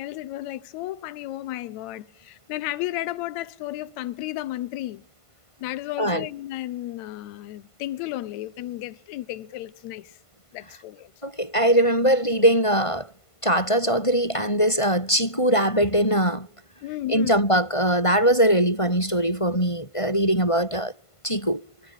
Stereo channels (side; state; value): right; late; 1.5 ms